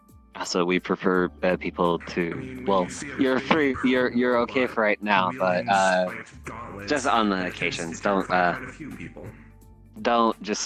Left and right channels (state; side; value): identical; both; correlation 1.00